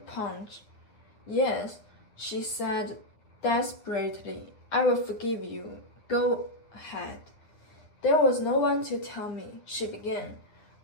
Yes, she said desperately. I will forgive you. Go ahead. There was no one to tell me, she began.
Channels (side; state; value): right; late; 9.5 ms